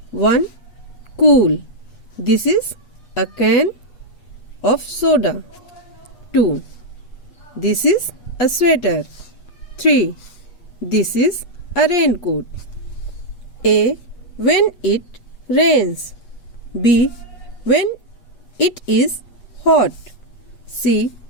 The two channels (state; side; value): late; right; 8.3 ms